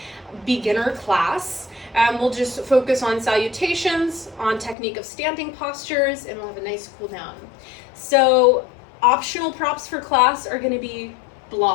beginner class. We'll just focus on salutations, on technique of standing postures, and we'll have a nice cool down. So optional props for class are going to be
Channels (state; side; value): drops out; right; at 4.8 s